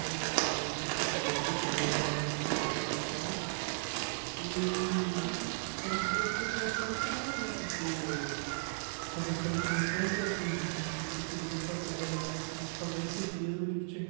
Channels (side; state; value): left; silent; digital silence